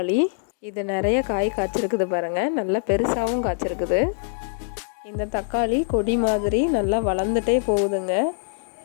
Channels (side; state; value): right; silent; digital silence